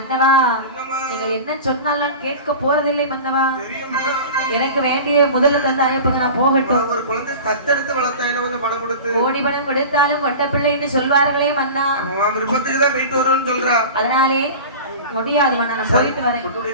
நீங்கள் என்ன சொன்னாலும் கேட்க போறதில்லை மன்னவா. எனக்கு வேண்டிய முதல்ல தந்த அனுப்புங்க, நான் போகட்டும். ஒரு குழந்தை தத்தெடுத்து வளர்த்தா என்ன கொஞ்சம் பணம் கொடுத்து கோடி பணம் கொடுத்தாலும் கொட்ட பிள்ளைன்னு சொல்வார்களே மன்னா. விருப்பத்துக்கு தான் போயிட்டு வருவோம்னு சொல்றா. அதனாலே முடியாது மன்னா, நான் போயிட்டு வரேன்.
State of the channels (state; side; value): inverted; both; correlation -0.34